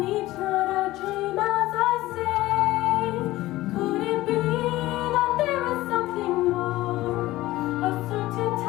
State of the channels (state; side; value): quieter; right; 17.2 dB